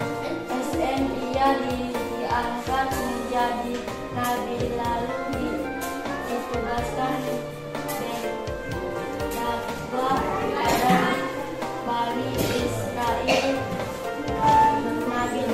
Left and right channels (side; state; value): both; identical; correlation 1.00